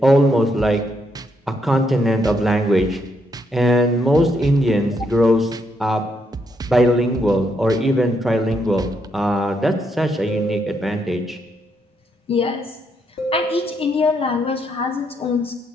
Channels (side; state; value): both; normal; correlation 0.77